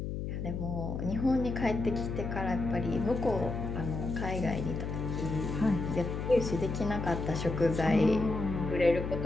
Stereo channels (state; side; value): noise; left; hum, 4 dB below the sound